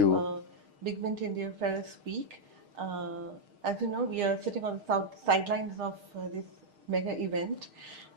BigMint India Ferris Week. As you know, we are sitting on the sidelines of this mega event,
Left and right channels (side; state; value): left; late; 6.5 ms